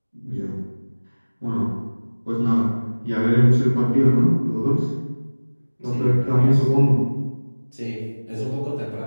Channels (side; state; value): both; inverted; correlation -1.00